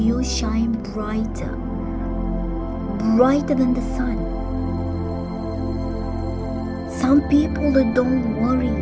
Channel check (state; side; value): identical; both; correlation 1.00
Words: shine brighter than the sun. Some people that don't worry,